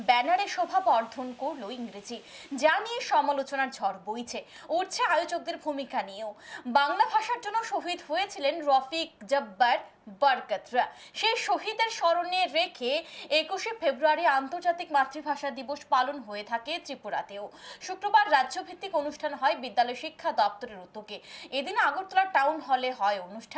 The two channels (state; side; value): identical; both; correlation 1.00